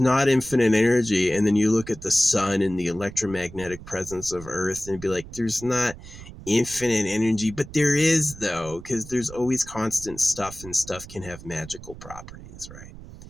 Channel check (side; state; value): right; noise; rumble, 15 dB below the sound